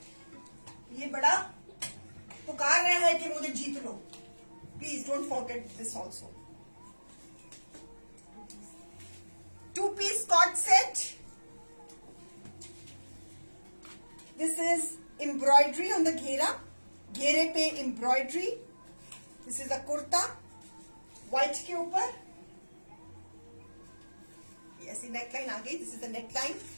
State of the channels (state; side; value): inverted; both; correlation -1.00